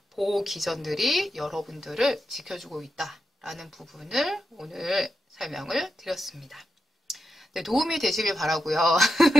보호 기전들이 여러분들을 지켜주고 있다라는 부분을 오늘 설명을 드렸습니다. 네, 도움이 되시길 바라고요.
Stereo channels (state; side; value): normal; both; correlation 0.87